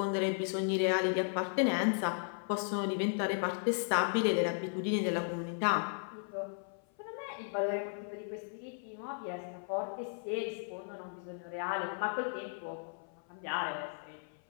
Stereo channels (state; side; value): silent; right; 54 dB below the other